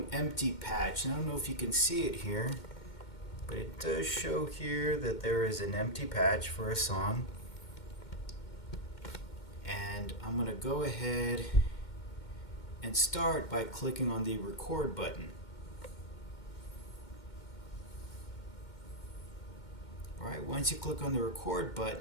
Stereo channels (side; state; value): right; late; 2.1 ms